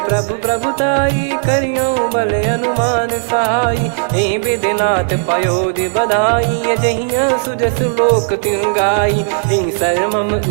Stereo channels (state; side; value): silent; left; digital silence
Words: प्रभु प्रभुताई करियो बल अनुमान सहाई यही विधिनाथ पयोधि बधाई जहिया सुजस लोक तिन गाई यही सरमम